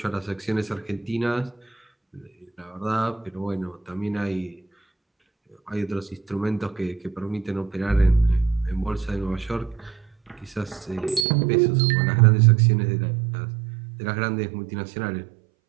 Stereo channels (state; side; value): drops out; left; at 11.2 s